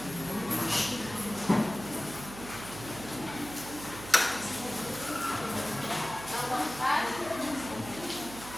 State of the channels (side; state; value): right; noise; hum, 13 dB below the sound